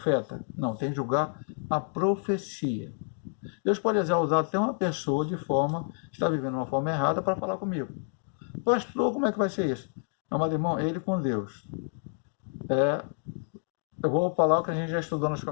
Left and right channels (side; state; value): right; silent; 59 dB below the other